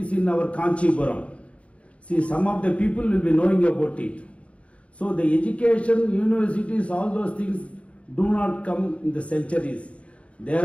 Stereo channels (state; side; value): late; right; 0.062 ms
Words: in our Kanchipuram. See, some of the people will be knowing about it. So the education, universities, all those things do not come in the centuries. They